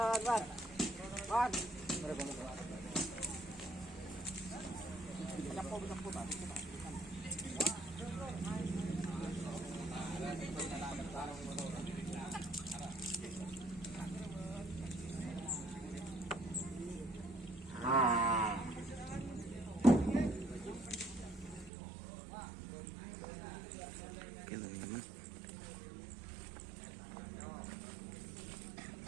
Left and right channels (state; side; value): drops out; left; at 21.7 s